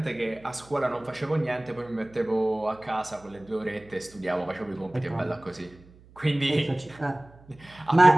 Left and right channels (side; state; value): right; noise; hum, 25 dB below the sound